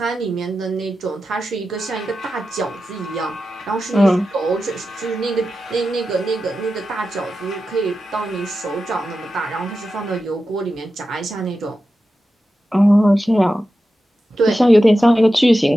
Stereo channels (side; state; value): both; normal; correlation 0.92